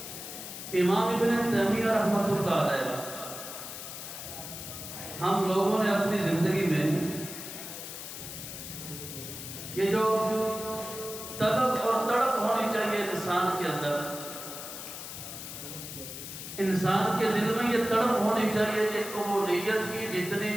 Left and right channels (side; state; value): left; noise; hiss, 9 dB below the sound